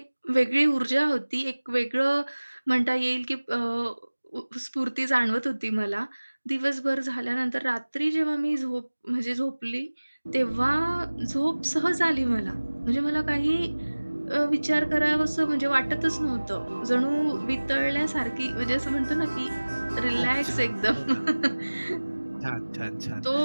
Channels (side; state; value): both; inverted; correlation -1.00